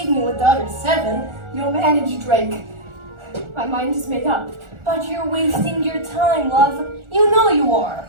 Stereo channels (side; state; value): left; late; 1.4 ms